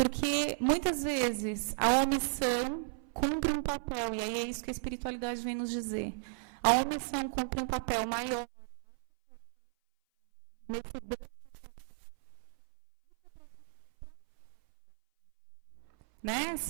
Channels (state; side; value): silent; left; 55 dB below the other